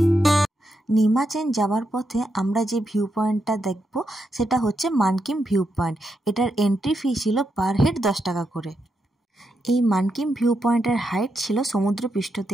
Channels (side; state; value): both; normal; correlation 0.83